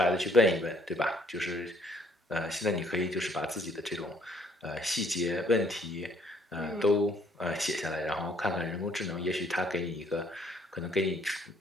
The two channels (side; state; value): both; normal; correlation 0.63